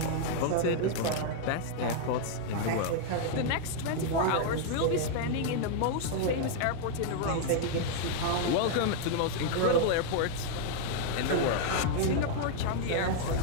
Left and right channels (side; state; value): both; different; correlation 0.00